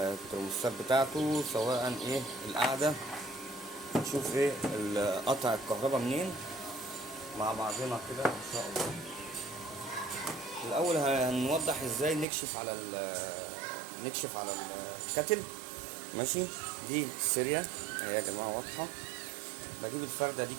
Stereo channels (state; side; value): drops out; left; at 12.2 s